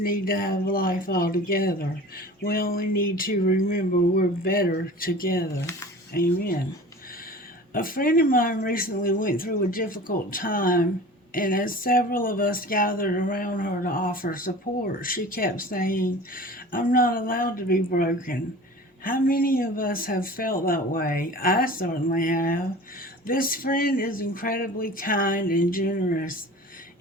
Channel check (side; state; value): both; normal; correlation 0.39